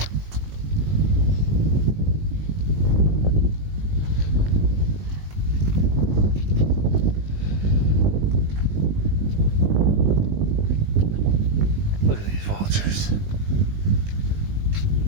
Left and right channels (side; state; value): left; late; 20 ms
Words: Look at these vultures.